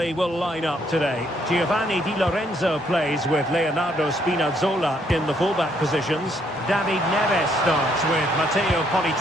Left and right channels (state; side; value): normal; both; correlation 0.70